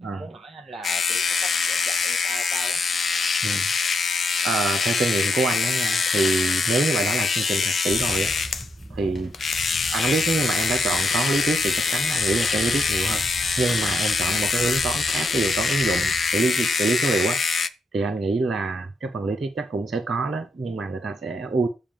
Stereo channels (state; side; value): normal; both; correlation 0.79